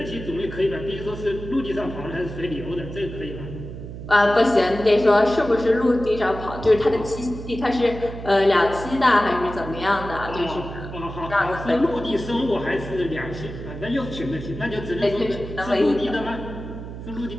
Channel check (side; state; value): right; noise; hum, 10 dB below the sound